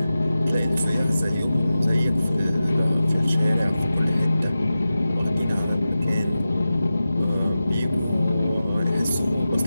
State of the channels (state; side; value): inverted; both; correlation -0.94